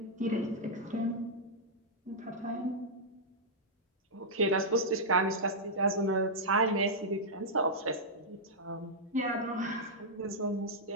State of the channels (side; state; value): both; normal; correlation -0.08